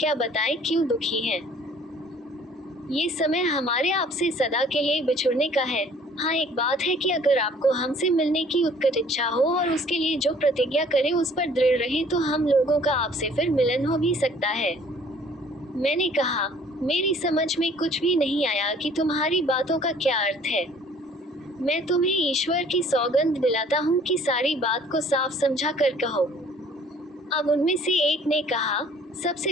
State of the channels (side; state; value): both; normal; correlation 0.55